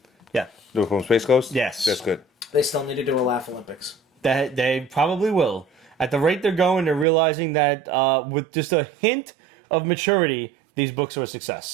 Yeah, The from Space Coast? Yes. That's good. They still need to do a Laugh Olympics. that they probably will. At the rate they're going, they're realizing that with just a hint of maturity, these books are a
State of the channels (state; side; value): drops out; left; at 7.1 s